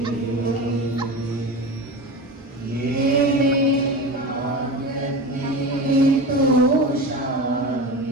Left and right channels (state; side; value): normal; both; correlation 0.27